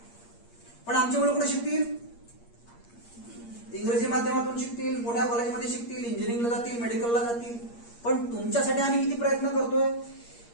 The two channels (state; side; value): late; right; 8.5 ms